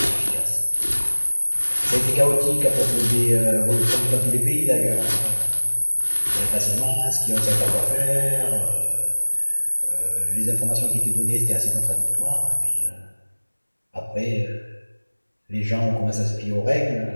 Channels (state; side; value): inverted; both; correlation -1.00